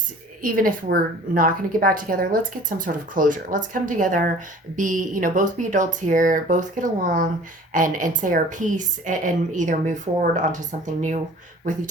even if we're not going to get back together, let's get some sort of closure. Let's come together, both be adults here, both get along and say our piece and either move forward onto something new with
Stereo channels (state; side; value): normal; both; correlation 0.47